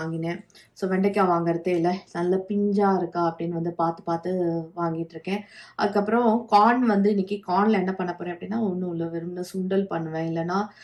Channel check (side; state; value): both; identical; correlation 1.00